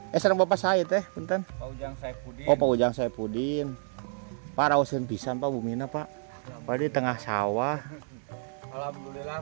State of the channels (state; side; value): silent; left; 58 dB below the other